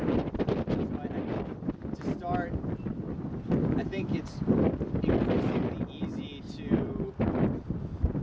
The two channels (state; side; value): identical; both; correlation 1.00